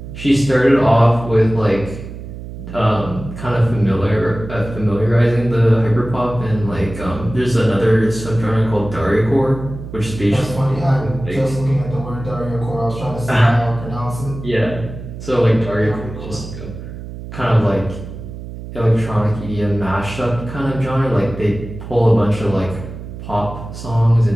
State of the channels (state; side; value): noise; right; hum, 11 dB below the sound